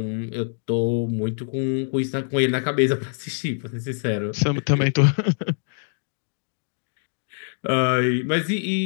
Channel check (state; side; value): silent; right; digital silence